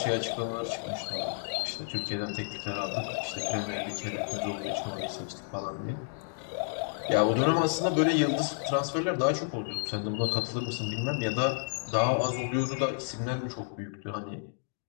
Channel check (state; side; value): silent; right; digital silence